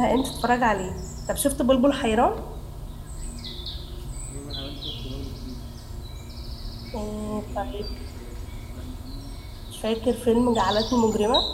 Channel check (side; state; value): both; identical; correlation 1.00